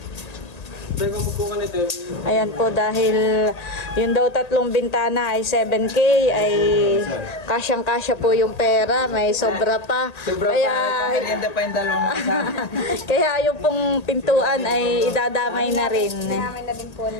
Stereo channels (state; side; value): late; right; 1.8 ms